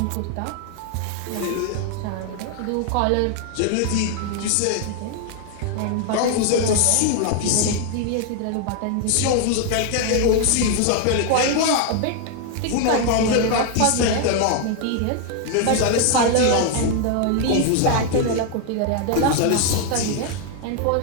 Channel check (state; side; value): different; both; correlation 0.00